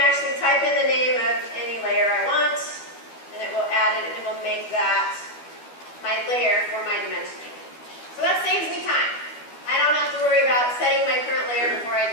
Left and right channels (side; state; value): right; late; 12 ms